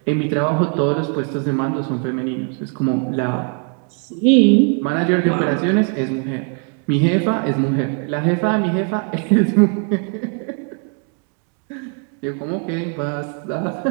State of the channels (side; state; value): left; quieter; 40.0 dB